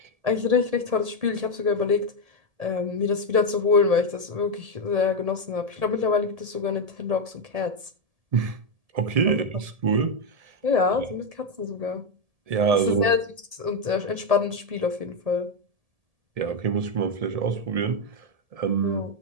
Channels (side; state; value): left; late; 1.7 ms